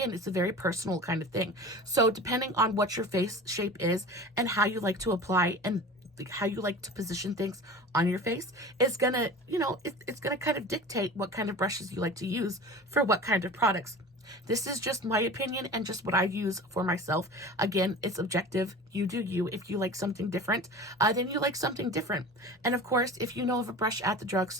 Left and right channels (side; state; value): both; normal; correlation 0.36